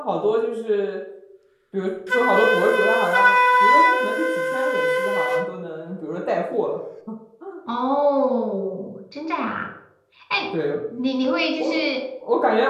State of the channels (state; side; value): identical; both; correlation 1.00